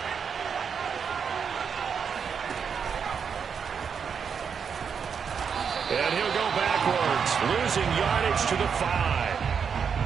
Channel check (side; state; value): left; quieter; 6.6 dB